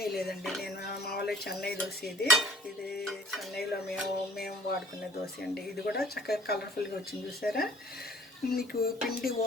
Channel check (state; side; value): normal; both; correlation 0.52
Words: లేదండి. నేను మామూలుగా చెన్నై దోశ ఇది చెన్నైలో మేము వాడుకునే దోశ అండి. ఇది కూడా చక్కగా కలర్ఫుల్గా వచ్చింది. చూసారా మీకు పిండి